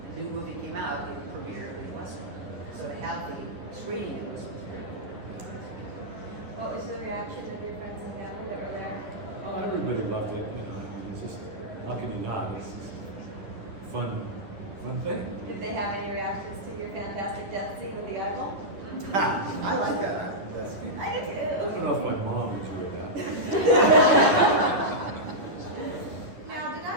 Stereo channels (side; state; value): left; late; 11 ms